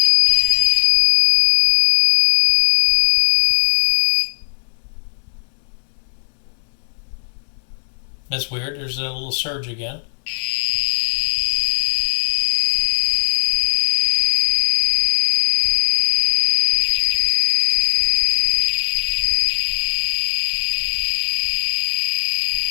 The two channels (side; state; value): right; silent; 67 dB below the other